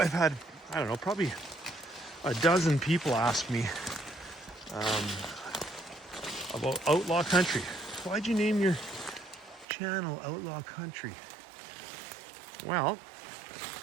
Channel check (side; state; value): left; drops out; at 9.7 s